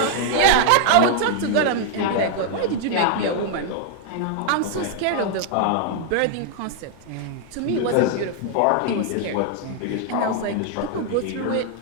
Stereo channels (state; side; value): different; both; correlation 0.00